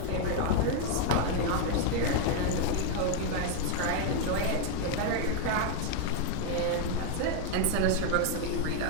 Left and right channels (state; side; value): different; both; correlation 0.00